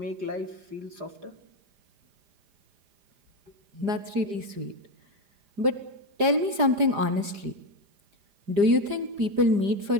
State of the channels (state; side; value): late; left; 5.0 ms